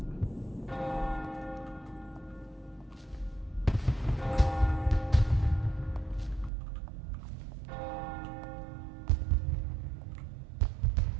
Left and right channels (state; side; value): drops out; left; at 6.5 s